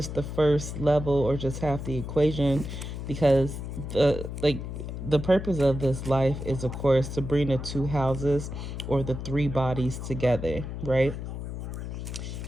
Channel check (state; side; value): noise; left; hum, 7 dB below the sound